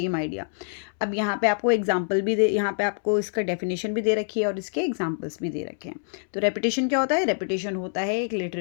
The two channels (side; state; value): right; silent; 61 dB below the other